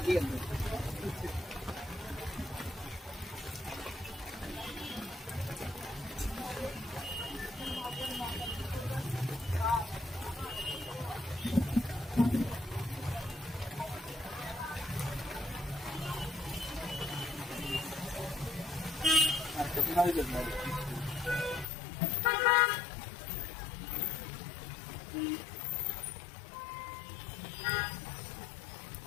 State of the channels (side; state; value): right; drops out; at 21.7 s